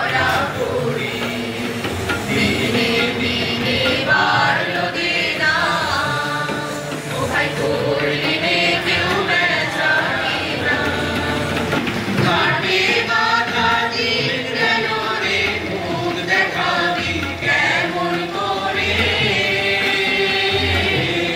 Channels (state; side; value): identical; both; correlation 1.00